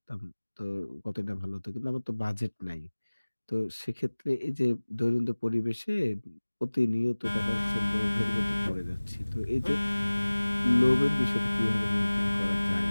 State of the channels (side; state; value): both; inverted; correlation -1.00